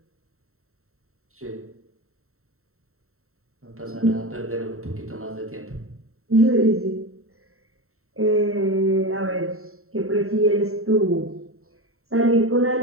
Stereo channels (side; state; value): left; late; 0.63 ms